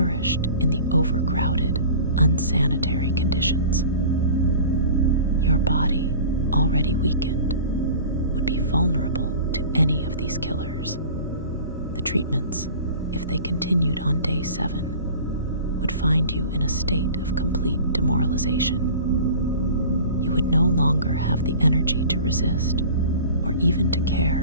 in the overcrowded, unsanitary conditions. Your body, already weakened, would be vulnerable to any of these killers. The treatments, if they continued on day 7, would find you in a state of complete demoralization. You would no longer have the energy to resist or even to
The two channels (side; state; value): both; inverted; correlation -0.41